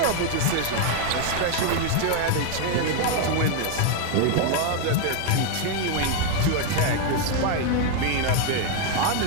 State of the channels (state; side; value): different; both; correlation 0.00